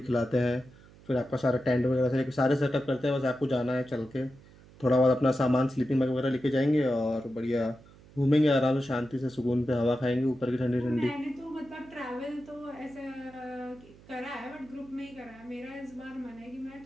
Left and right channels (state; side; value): noise; right; hum, 23 dB below the sound